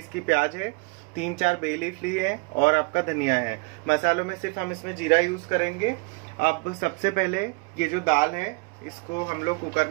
की प्याज है। 3-4 बे लीफ ली है और आपका धनिया है। मसालों में सिर्फ हम इसमें जीरा यूज करेंगे। अब सबसे पहले ये जो दाल है, इसको हम लोग कुकर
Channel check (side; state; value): left; quieter; 29.1 dB